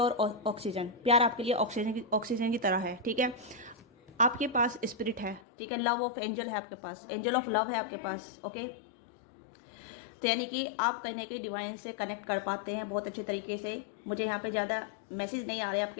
ऑक्सीजन, प्यार आपके लिए ऑक्सीजन की तरह है, ठीक है। आपके पास स्पिरिट है, ठीक है, लव ऑफ एंजल है आपके पास, एंजल ऑफ लव है आपके पास। ओके, तो यानी कि आप कहीं ना कहीं डिवाइन से कनेक्ट कर पाते हैं बहुत अच्छे तरीके से। मुझे यहाँ पे ज़्यादा मैसेज नहीं आ रहे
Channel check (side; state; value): right; drops out; at 5.4 s